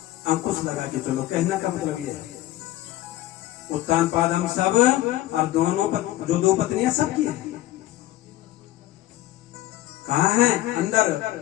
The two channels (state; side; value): quieter; right; 15.3 dB